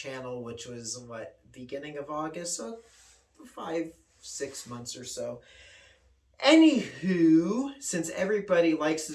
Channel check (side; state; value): both; identical; correlation 1.00